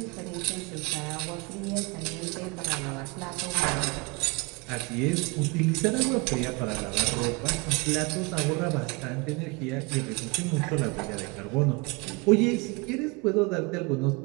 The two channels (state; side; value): quieter; left; 28.3 dB